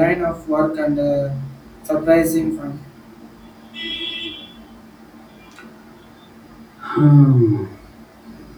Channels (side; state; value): both; identical; correlation 1.00